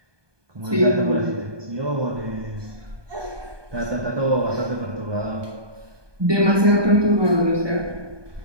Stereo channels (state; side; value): late; left; 1.2 ms